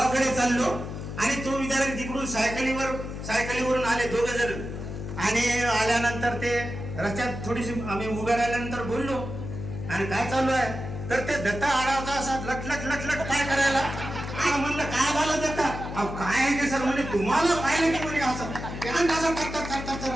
चाललो आणि तो विद्यार्थी तिकडून सायकलीवरून आले 2 जण आणि आल्यानंतर ते रस्त्यात थोडीशी आम्ही उभ्या राहिल्यानंतर बोललो आणि काय चालू आहे, तर ते दत्ता आडावचा असा लटलट काय करायला. म्हणलं काय झालं दत्ता. काय आहे ते सर म्हणजे तुम्हाला पाहिलं की म्हणजे असं अरे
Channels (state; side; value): noise; left; hum, 8 dB below the sound